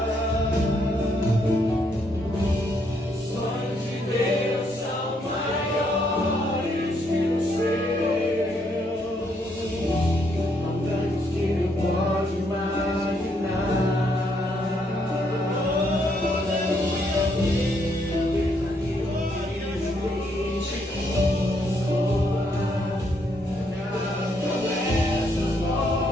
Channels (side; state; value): both; normal; correlation 0.73